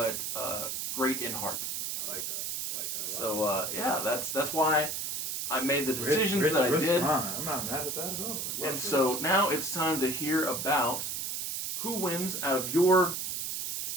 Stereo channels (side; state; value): right; noise; hiss, 3 dB below the sound